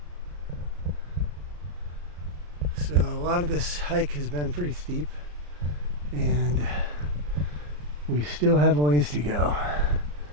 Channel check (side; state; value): left; late; 34 ms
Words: So a lot of this hike has been pretty steep, and we still have a ways to go.